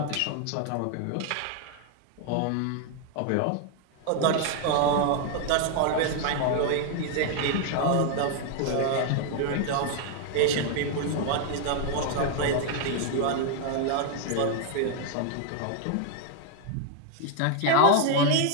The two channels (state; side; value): different; both; correlation 0.00